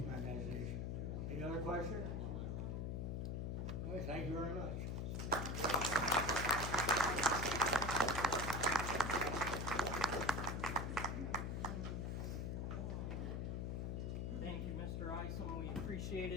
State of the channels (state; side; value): noise; left; hum, 1 dB below the sound